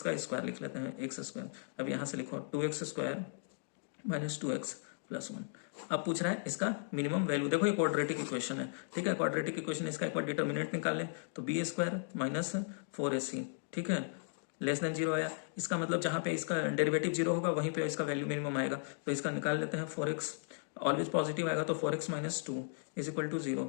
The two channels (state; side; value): silent; right; digital silence